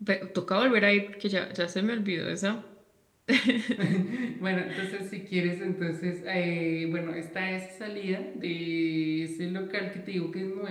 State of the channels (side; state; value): both; identical; correlation 1.00